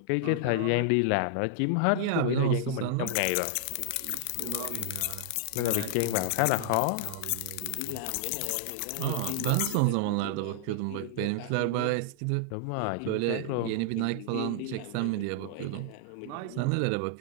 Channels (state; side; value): different; both; correlation -0.01